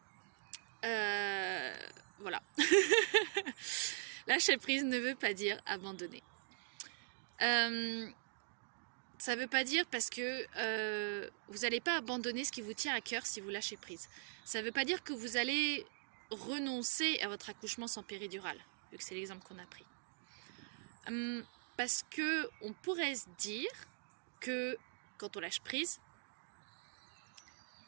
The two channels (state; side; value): silent; left; digital silence